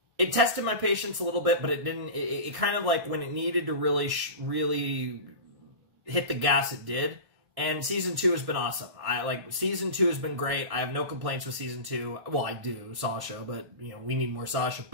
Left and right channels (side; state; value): left; late; 1.6 ms